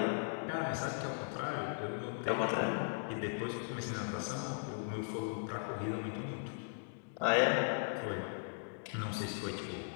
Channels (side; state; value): right; silent; digital silence